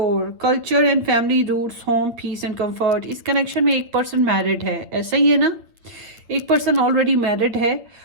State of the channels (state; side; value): late; left; 8.8 ms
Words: culture and family roots, home, peace and comfort. इस कनेक्शन में एक पर्सन मैरिड है, ऐसा ही है ना? एक पर्सन ऑलरेडी मैरिड है